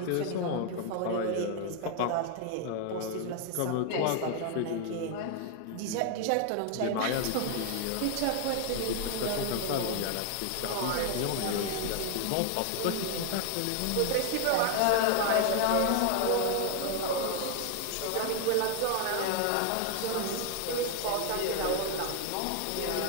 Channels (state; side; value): different; both; correlation 0.00